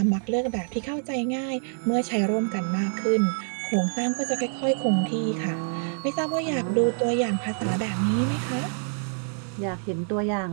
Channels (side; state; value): left; silent; 61 dB below the other